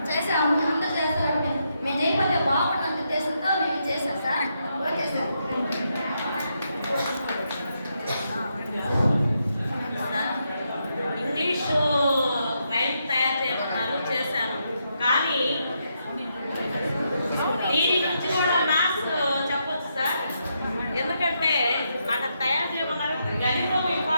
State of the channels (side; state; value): both; inverted; correlation -0.80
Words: చేసాము. అందరూ చేస్తారంటే మేము చేయకపోతే బాగుంటుంది ఉద్దేశంతో మేము చేసాం sir. Okay sir. English rhyme తయారు చేయమన్నారు, చేశాను. కానీ దీని నుంచి కూడా మ్యాథ్స్ చెప్పొచ్చు సార్. ఎందుకంటే నాకు తయారు చేయమన్నారు, గణితం